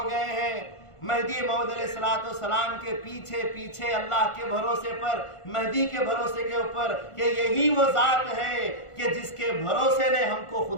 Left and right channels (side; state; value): right; late; 1.5 ms